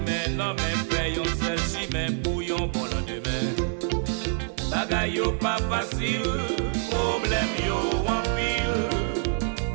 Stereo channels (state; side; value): silent; left; 56 dB below the other